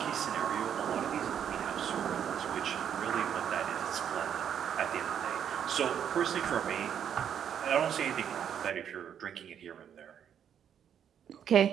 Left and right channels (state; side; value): quieter; left; 8.8 dB